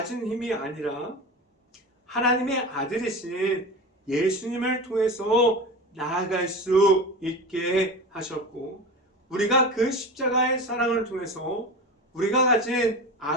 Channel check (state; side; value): normal; both; correlation 0.28